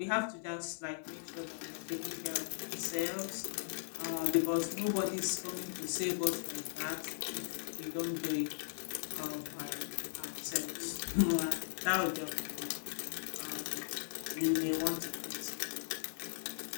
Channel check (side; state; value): right; silent; 52 dB below the other